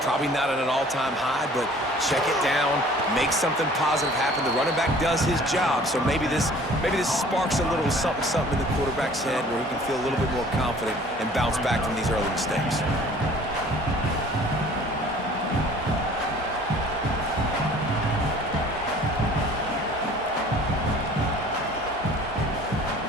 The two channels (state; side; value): normal; both; correlation 0.51